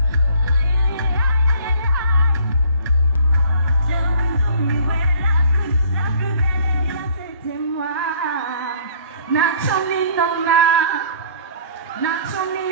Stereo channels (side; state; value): both; inverted; correlation -0.55